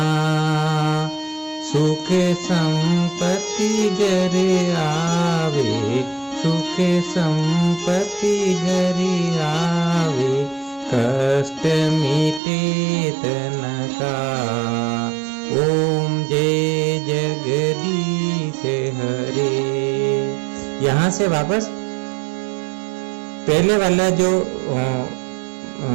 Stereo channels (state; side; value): drops out; left; at 12.4 s